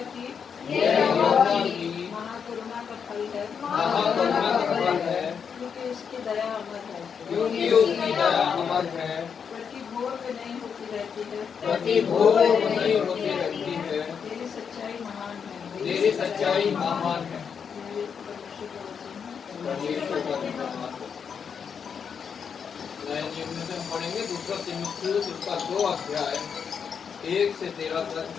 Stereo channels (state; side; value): quieter; right; 6.8 dB